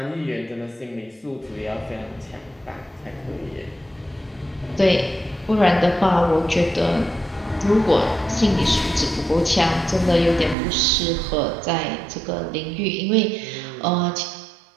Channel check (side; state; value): left; drops out; at 10.6 s